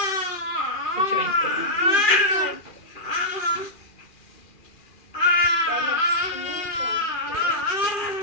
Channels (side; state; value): right; late; 2.4 ms